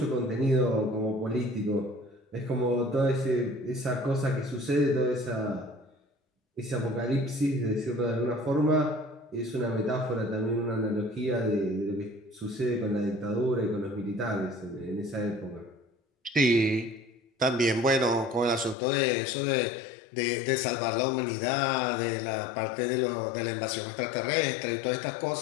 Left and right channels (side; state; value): right; drops out; at 18.8 s